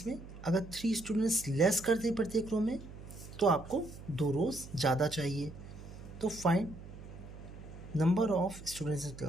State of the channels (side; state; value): right; noise; hum, 15 dB below the sound